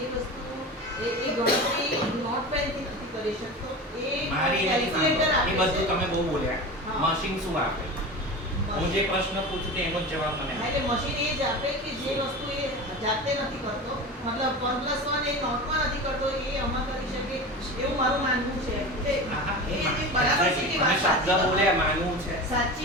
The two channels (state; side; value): normal; both; correlation 0.29